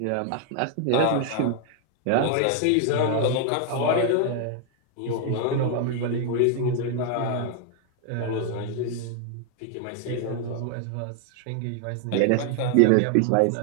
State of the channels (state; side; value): different; both; correlation 0.00